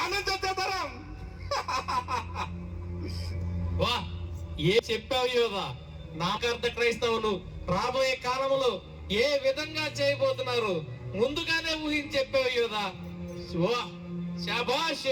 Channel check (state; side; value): identical; both; correlation 1.00